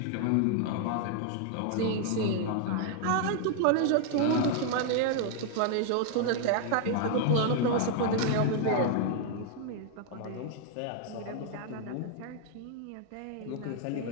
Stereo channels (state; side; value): different; both; correlation 0.00